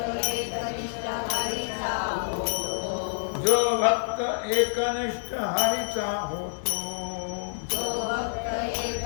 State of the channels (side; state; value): right; silent; digital silence